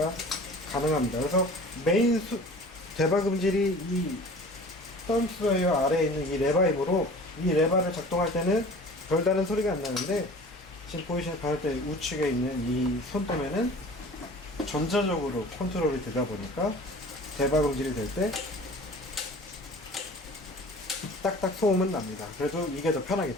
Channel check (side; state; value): both; normal; correlation 0.43